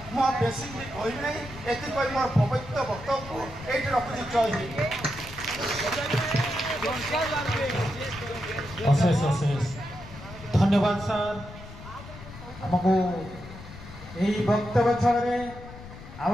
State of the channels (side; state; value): left; noise; rumble, 15 dB below the sound